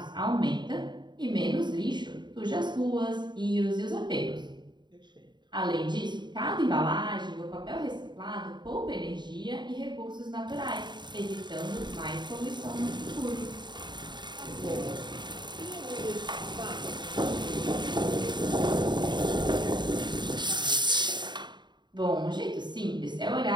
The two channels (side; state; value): left; late; 0.22 ms